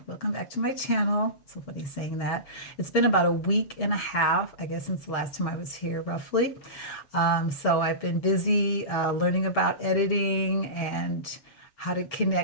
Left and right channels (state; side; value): late; right; 7.1 ms